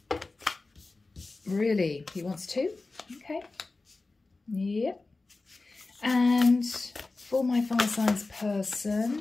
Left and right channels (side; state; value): right; quieter; 3.5 dB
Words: Really? He wants 2? Okay. Yep. And for my fire signs